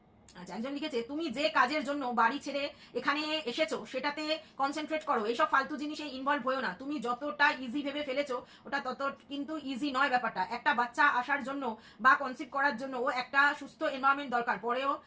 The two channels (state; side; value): identical; both; correlation 1.00